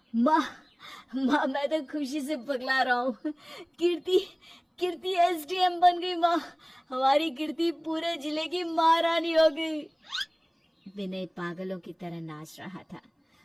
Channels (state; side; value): identical; both; correlation 1.00